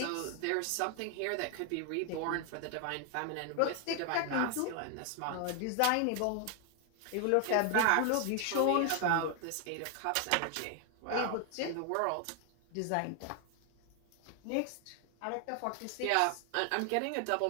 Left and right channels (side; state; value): both; different; correlation 0.00